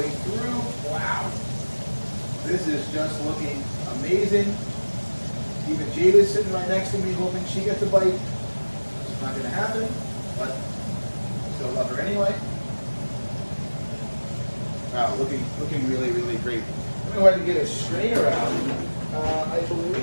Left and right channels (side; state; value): both; inverted; correlation -1.00